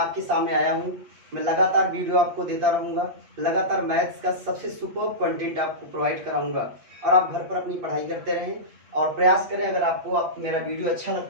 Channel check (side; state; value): left; late; 8.5 ms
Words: सामने आया हूँ। मैं लगातार वीडियो आपको देता रहूँगा, लगातार मैथ्स का सबसे सुपर्ब कंटेंट आपको प्रोवाइड कराऊँगा और आप घर पर अपनी पढ़ाई करते रहें और प्रयास करें। अगर आपको मेरा वीडियो अच्छा